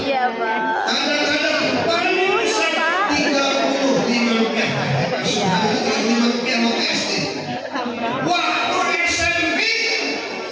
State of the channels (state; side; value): identical; both; correlation 1.00